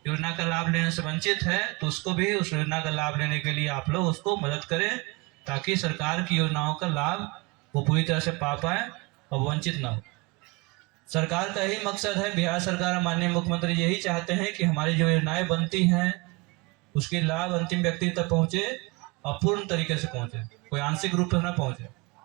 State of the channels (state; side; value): quieter; left; 26.3 dB